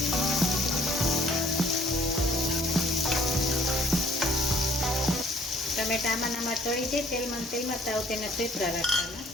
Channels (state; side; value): normal; both; correlation 0.58